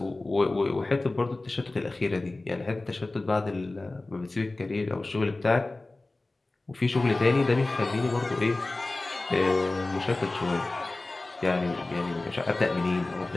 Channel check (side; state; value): right; quieter; 3.0 dB